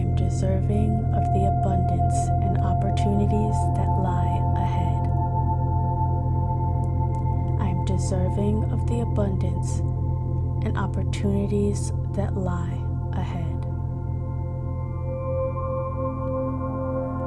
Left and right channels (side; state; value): both; identical; correlation 1.00